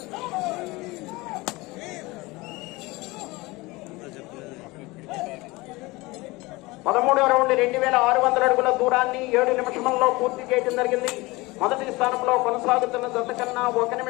13వ రౌండ్ 2600 అడుగుల దూరాన్ని 7 నిమిషంలో పూర్తి చేయడం జరిగింది. మొదటి స్థానంలో కొనసాగుతున్న జత కన్నా 1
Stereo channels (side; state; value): right; quieter; 22.3 dB